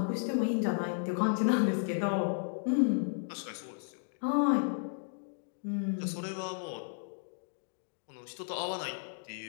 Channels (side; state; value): right; silent; digital silence